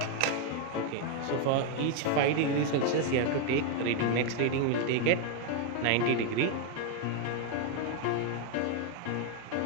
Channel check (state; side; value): different; both; correlation 0.01